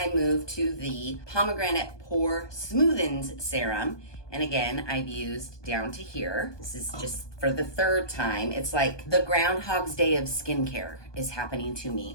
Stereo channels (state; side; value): late; right; 1.2 ms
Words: move to the Pomegranate Pore Smoothens Serum. And again, I've used down to here. This is just for the third time. It's like the Groundhog's Day of skincare is happening to